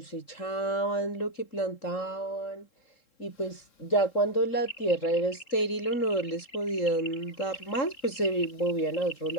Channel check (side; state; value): right; late; 3.7 ms